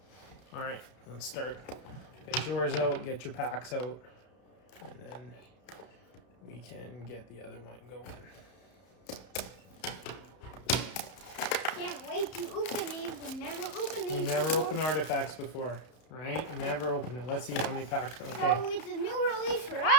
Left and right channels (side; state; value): right; late; 32 ms